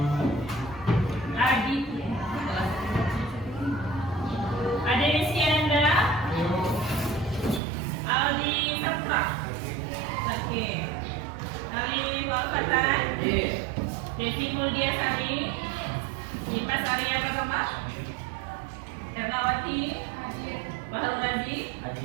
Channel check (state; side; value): drops out; left; at 7.6 s